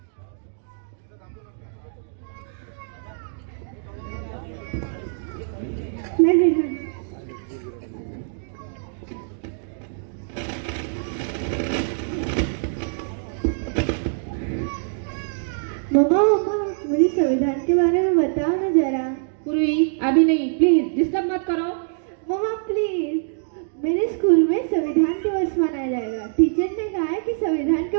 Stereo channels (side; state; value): left; silent; digital silence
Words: नहीं मम्मा मम्मा, मुझे संविधान के बारे में बताओ ना जरा। पूर्वी अभी नहीं, प्लीज डिस्टर्ब मत करो। मम्मा प्लीज, मेरे स्कूल में संविधान दिवस मनाया जाएगा। टीचर ने कहा है कि संविधान के